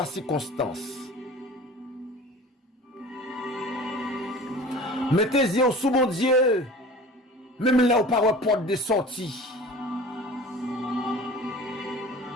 circonstance. Mettez les yeux sous mon Dieu, même là où par une porte de sortie.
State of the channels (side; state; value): both; normal; correlation 0.41